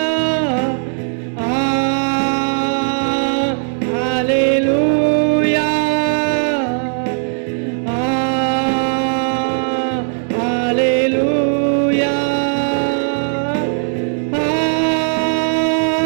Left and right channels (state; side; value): silent; left; digital silence